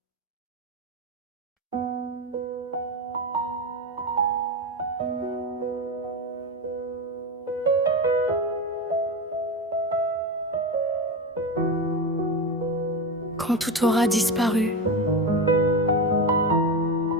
quand tout aura disparu,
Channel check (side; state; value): both; normal; correlation 0.18